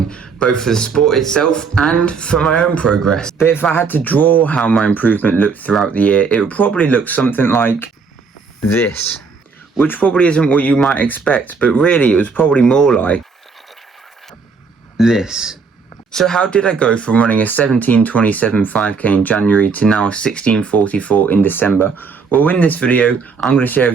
both for the sport itself and for my own progress. But if I had to draw how my improvement looked throughout the year, it would probably look something like this. Which probably isn't what you might expect, but really it was probably more like this. So how did I go from running a 17:27 5k in January to now a 16:44 in December? Well, in this video, I'm going to share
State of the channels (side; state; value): left; quieter; 5.1 dB